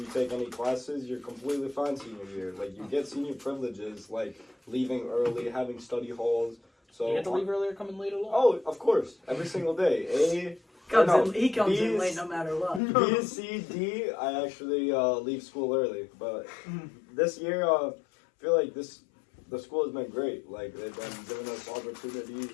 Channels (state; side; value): drops out; right; at 12.8 s